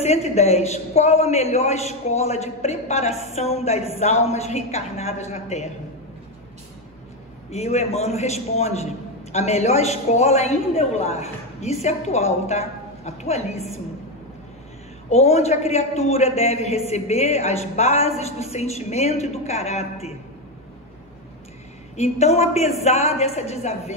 qual a melhor escola de preparação das almas reencarnadas na Terra? E o Emmanuel responde, a melhor escola ainda é o lar. Isso é atual, tá? Atualíssimo. Onde a criatura deve receber as bases do sentimento e do caráter. Então, apesar dessa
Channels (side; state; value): both; normal; correlation 0.10